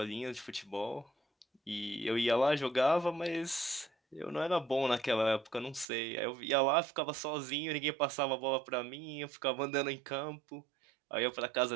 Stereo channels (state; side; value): drops out; left; at 5.9 s